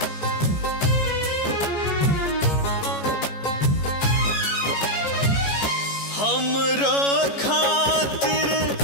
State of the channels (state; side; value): late; right; 14 ms